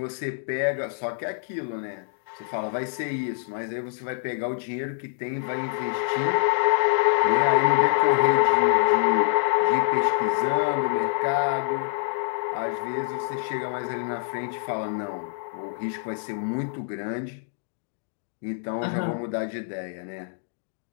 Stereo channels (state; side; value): silent; right; digital silence